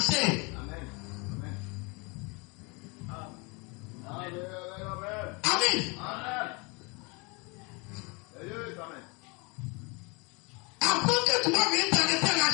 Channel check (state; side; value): quieter; right; 29.9 dB